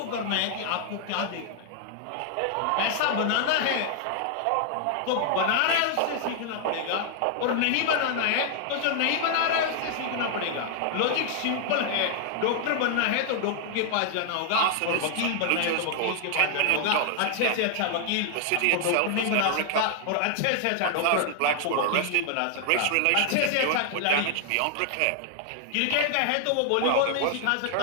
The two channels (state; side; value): different; both; correlation -0.01